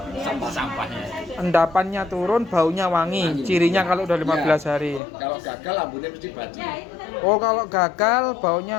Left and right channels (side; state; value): right; drops out; at 5.0 s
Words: Sampah-sampahnya. Endapannya turun, baunya wangi. Cirinya kalau udah 15 hari. Kalau gagal lambungnya mesti bacin. Oh, kalau gagal